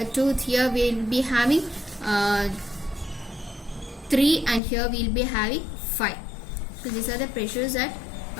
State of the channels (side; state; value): right; drops out; at 4.6 s